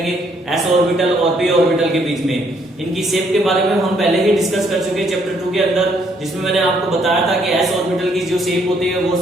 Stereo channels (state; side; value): normal; both; correlation 0.69